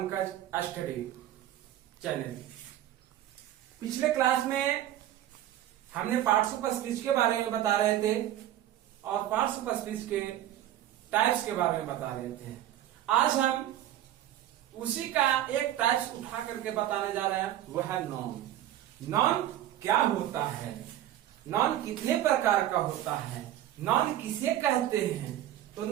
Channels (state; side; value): quieter; left; 12.6 dB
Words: study channel. पिछले class में हमने पार्ट्स ऑफ स्पीच के बारे में बता रहे थे और पार्ट्स ऑफ स्पीच के टाइप्स के बारे में बता रहे थे। आज हम उसी का एक टाइप्स उठा करके बताने जा रहे हैं, वह है नॉन। नॉन क्या होता है, नॉन कितने प्रकार का होता है, नॉन किसे कहते हैं। तो